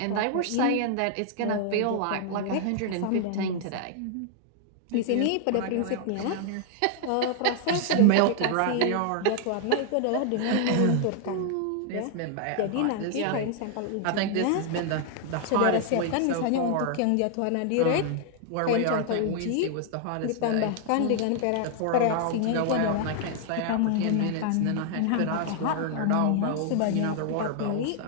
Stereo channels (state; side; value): different; both; correlation 0.00